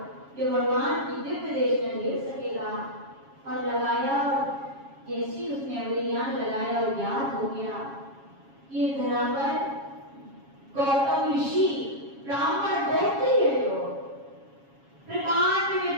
जो भगवान की दिव्य देश में ले सकेगा। और लगाया, और जैसी उसने अभिज्ञान लगाया और ज्ञात हो गया ये धरा पर गौतम ऋषि ब्राह्मण गोत्री है, जो प्रकांड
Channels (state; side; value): late; left; 7.3 ms